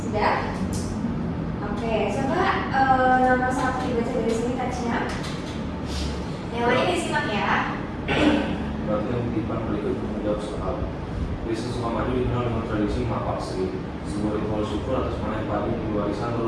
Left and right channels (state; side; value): identical; both; correlation 1.00